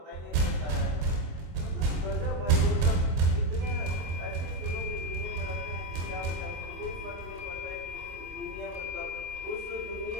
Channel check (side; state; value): left; late; 25 ms